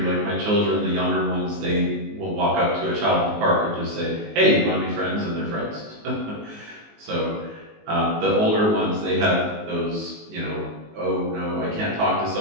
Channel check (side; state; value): left; late; 19 ms